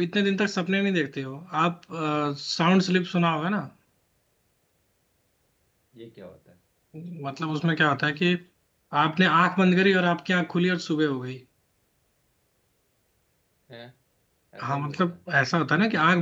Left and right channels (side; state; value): both; identical; correlation 1.00